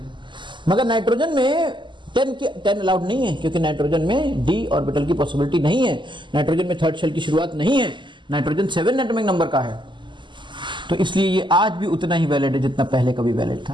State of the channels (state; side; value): late; left; 0.23 ms